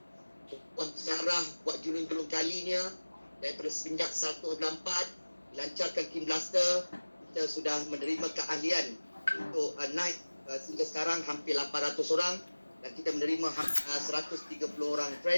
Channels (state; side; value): inverted; both; correlation -1.00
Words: buat sejarah, buat julung-julung kalinya daripada semenjak 194 lancarkan King Blaster. Kita sudah menerima keahlian untuk naik sehingga sekarang hampir 800 orang dan kita menerima 130 orang